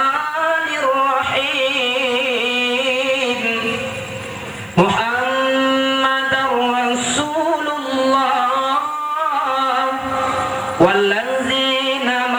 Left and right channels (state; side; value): noise; left; hiss, 28 dB below the sound